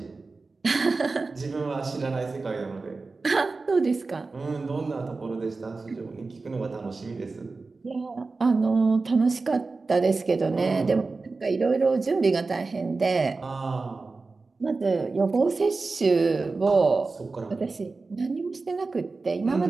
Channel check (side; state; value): left; quieter; 3.9 dB